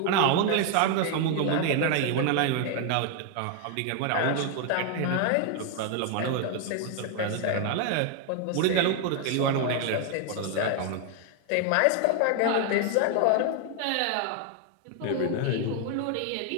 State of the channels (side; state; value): both; different; correlation 0.00